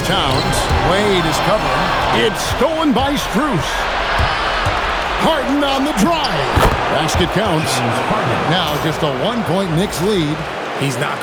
Towns. Wade is covering. It's stolen by Strus. Harden on the drive. Basket counts. Now just a 1-point Knicks lead. He's not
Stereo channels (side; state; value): both; identical; correlation 1.00